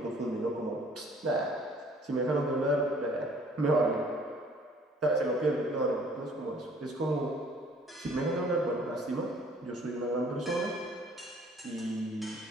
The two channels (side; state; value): both; normal; correlation 0.56